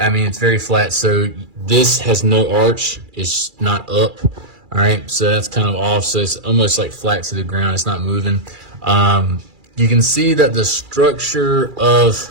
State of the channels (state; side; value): late; left; 2.4 ms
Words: mean, it's very flat. So this has no arch. It's not up. All right, so that's kind of off. So it's almost like flat to the ground. It's not moving. You can see that the structure of